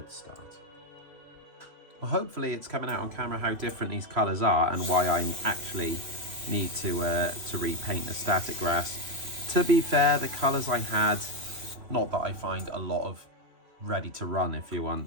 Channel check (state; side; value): late; left; 3.1 ms